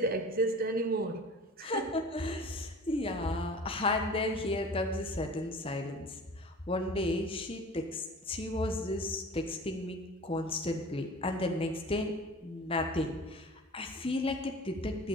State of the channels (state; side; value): normal; both; correlation 0.41